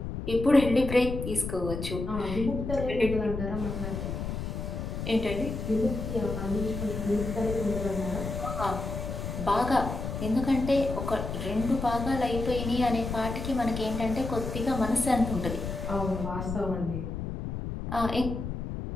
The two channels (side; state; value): left; noise; rumble, 5 dB below the sound